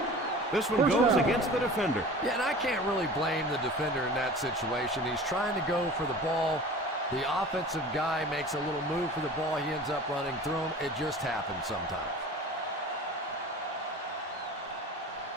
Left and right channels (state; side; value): normal; both; correlation 0.39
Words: This one goes against the defender. Yeah, and I can't really blame the defender in that situation. He's trying to go for the ball. The offensive guy makes a little move for the ball. He ends up running through him. It just happens sometimes.